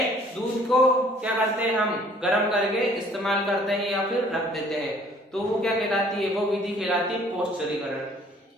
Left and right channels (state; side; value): normal; both; correlation 0.57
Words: दूध को क्या करते हैं, हम गर्म करके इस्तेमाल करते हैं या फिर रख देते हैं, तो वो क्या कहलाती है, वो विधि कहलाती है पौष्टिकीकरण।